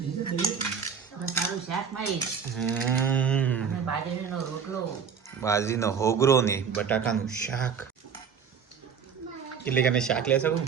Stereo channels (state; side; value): quieter; left; 6.8 dB